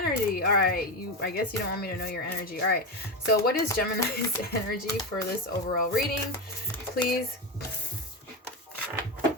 All right, I guess you don't want me to know your energy. All right, so what is Gemini's energy for this overall reading, please?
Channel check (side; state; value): both; normal; correlation 0.15